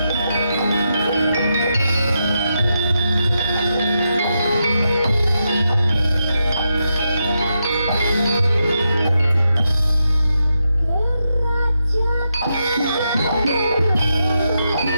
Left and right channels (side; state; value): both; inverted; correlation -0.85